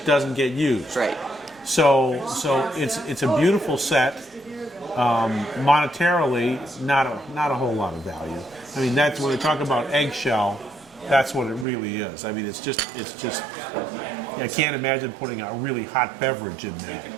doesn't get used. Right. So it's a beautiful set. Monetarily, not a whole lot of value. I mean, that's when we talk about eggshell. That's what it really is. I mean, it's just. I can't imagine putting a really hot beverage in there.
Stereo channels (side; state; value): left; drops out; at 11.7 s